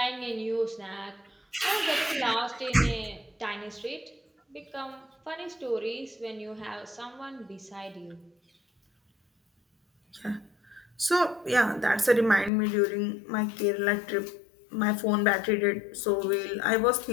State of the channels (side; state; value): right; drops out; at 12.5 s